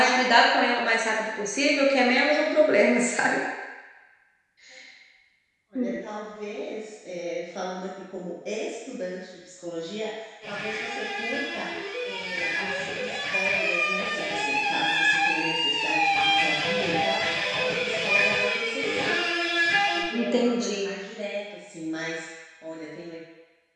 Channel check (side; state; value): both; identical; correlation 1.00